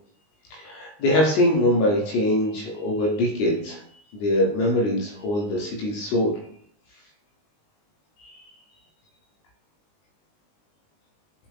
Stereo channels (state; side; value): late; right; 19 ms